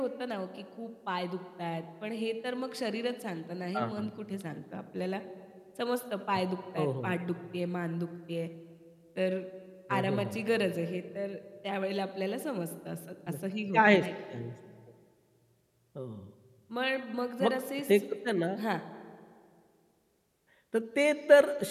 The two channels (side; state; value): both; identical; correlation 1.00